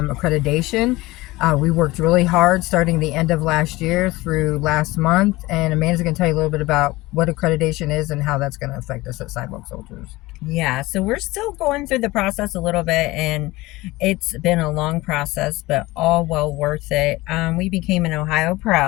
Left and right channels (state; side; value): quieter; right; 20.1 dB